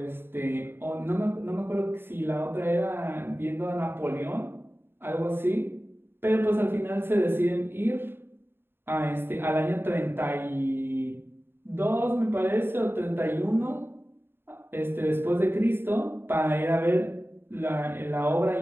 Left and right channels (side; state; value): left; late; 0.11 ms